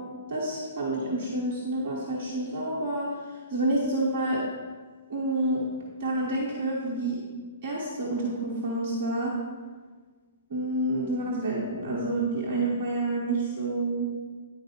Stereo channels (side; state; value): both; inverted; correlation -0.36